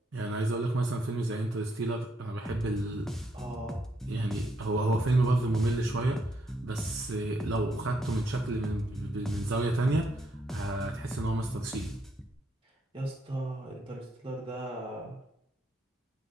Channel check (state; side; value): normal; both; correlation 0.75